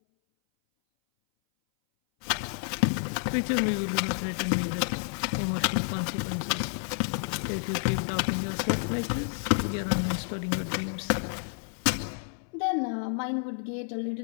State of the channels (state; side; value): silent; right; 58 dB below the other